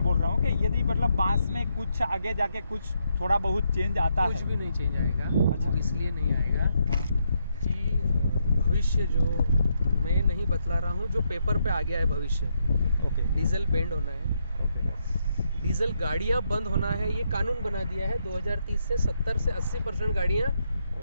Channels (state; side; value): inverted; both; correlation -0.78